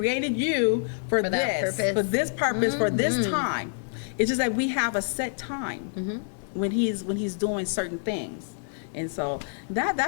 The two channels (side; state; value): right; silent; digital silence